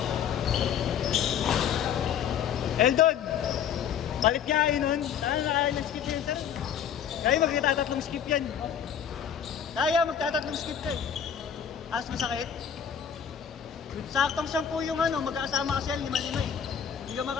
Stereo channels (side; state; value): right; quieter; 8.3 dB